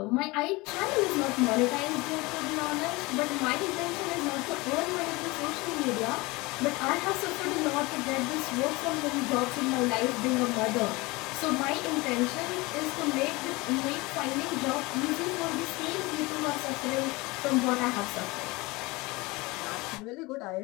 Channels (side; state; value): right; quieter; 23.3 dB